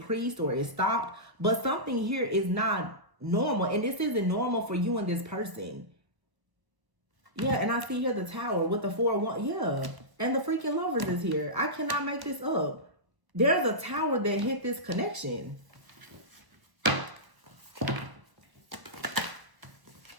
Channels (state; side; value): late; left; 1.0 ms